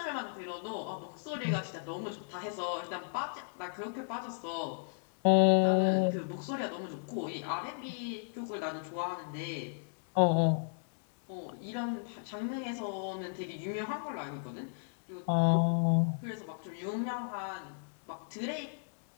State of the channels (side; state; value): right; silent; digital silence